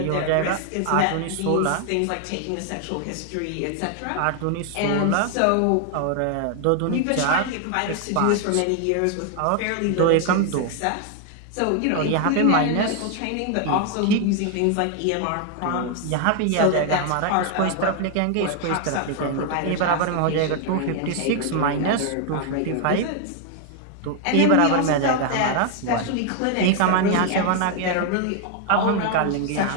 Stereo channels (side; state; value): both; different; correlation 0.00